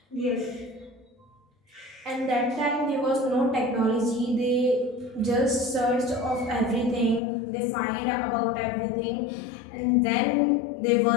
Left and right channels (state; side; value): drops out; right; at 7.2 s